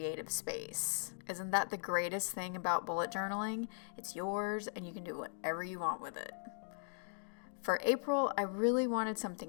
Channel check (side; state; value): right; silent; digital silence